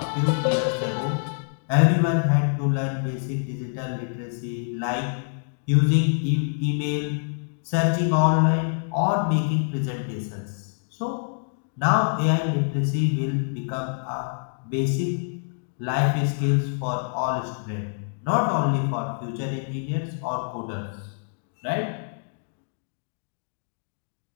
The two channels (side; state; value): right; silent; digital silence